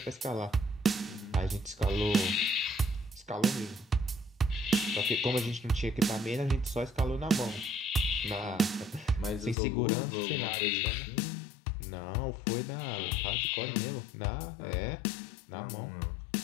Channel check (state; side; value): drops out; right; at 9.6 s